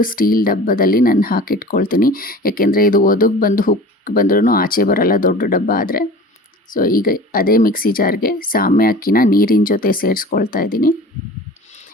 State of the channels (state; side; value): normal; both; correlation 0.40